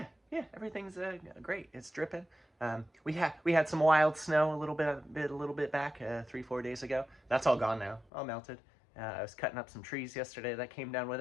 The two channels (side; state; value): right; drops out; at 8.1 s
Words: everything's great. It's dripping. We had some wild snow a little bit back 3-4 days ago. That's all gone now. All melted. I was cutting up some trees yesterday that came down with